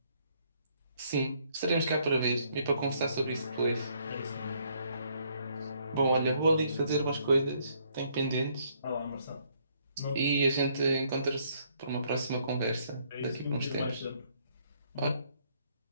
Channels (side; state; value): both; inverted; correlation -0.68